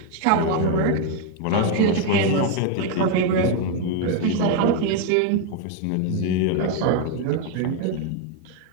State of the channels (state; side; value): different; both; correlation 0.01